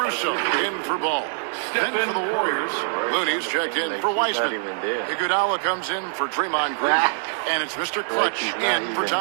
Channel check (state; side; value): silent; left; digital silence